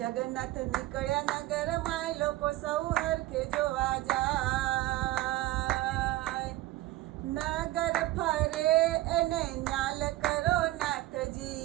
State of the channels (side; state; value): left; quieter; 16.9 dB